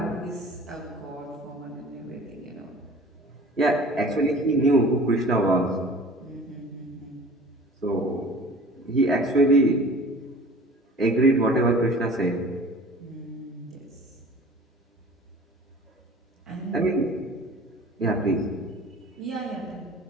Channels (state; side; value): normal; both; correlation 0.44